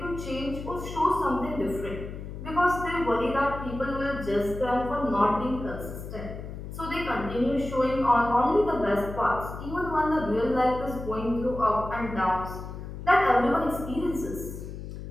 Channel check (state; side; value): noise; left; hum, 9 dB below the sound